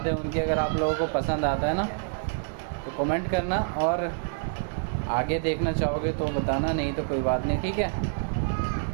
है उनकी। अगर आप लोगों को पसंद आता है ना तो कमेंट करना, और आगे देखना चाहोगे तो बताना, नहीं तो कोई बात नहीं, ठीक है।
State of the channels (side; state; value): left; silent; digital silence